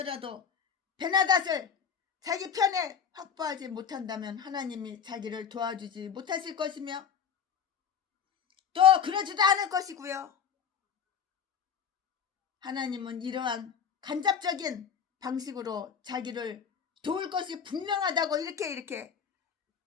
베나닷을 자기 편에 확보하지 못한다면 하나님이 자기를 도와주지 못하실 것이며 또 그러지도 않을 것이고요. 하나님은 이러한 간접적인 방식으로 자기를 도울 것이 분명하다고 이렇게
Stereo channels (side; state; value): right; quieter; 7.4 dB